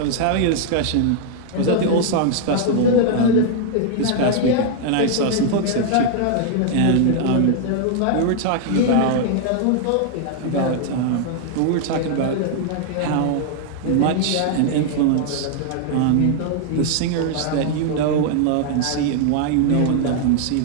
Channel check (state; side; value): different; both; correlation 0.00